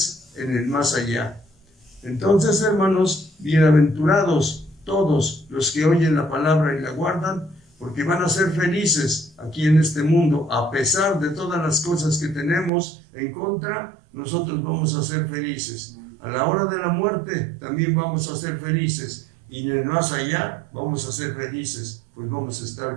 en el más allá. Entonces, hermanos, bienaventurados todos los que oyen la palabra y la guardan, porque van a ser felices aquí en este mundo. A pesar de todas las cosas que tenemos en contra, nosotros vamos a ser felices. A la hora de la muerte también vamos a ser felices, y en el más allá vamos a ser felices, pues vamos a estar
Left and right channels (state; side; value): drops out; left; at 12.7 s